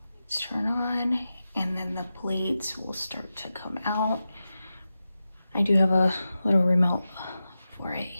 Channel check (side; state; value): both; inverted; correlation -0.92